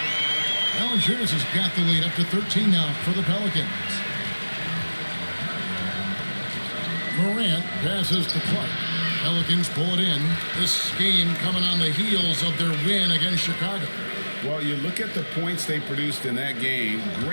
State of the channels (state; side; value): inverted; both; correlation -1.00